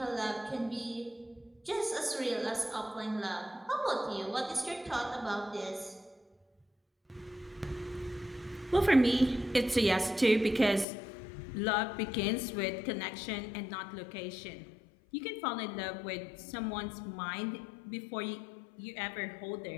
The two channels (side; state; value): right; drops out; at 10.9 s